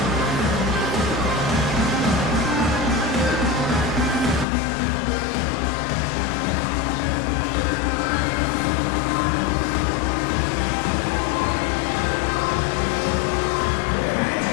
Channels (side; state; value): right; drops out; at 4.5 s